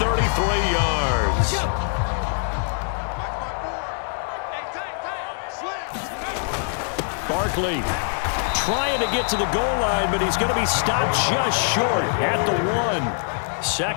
yards. Barkley trying to get to the goal line, but he's going to be stopped just short at the 1.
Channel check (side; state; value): right; silent; 55 dB below the other